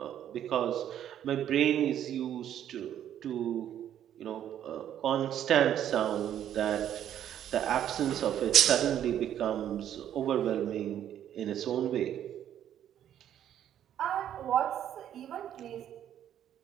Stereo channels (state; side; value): quieter; left; 10.6 dB